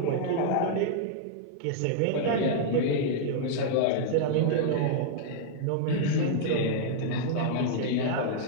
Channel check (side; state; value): both; different; correlation -0.01